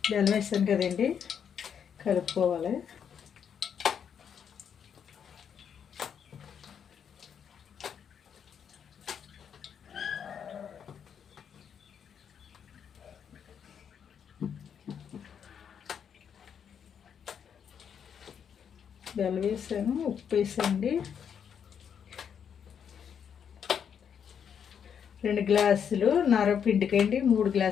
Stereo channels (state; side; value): quieter; right; 7.8 dB